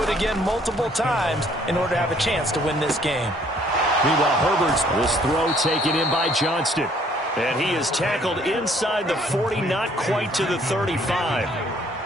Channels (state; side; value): normal; both; correlation 0.62